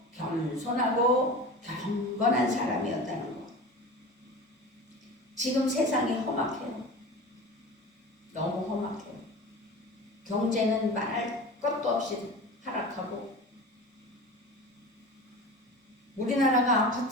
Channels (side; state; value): both; normal; correlation 0.33